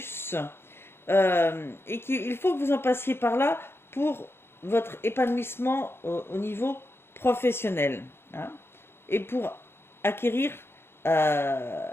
Et qu'il faut que vous en passiez par là pour votre épanouissement au niveau professionnel, hein, et pour acquérir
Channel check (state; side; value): late; right; 0.11 ms